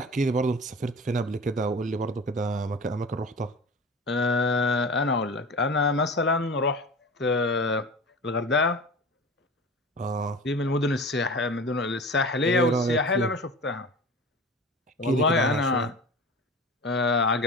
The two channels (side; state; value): both; normal; correlation 0.34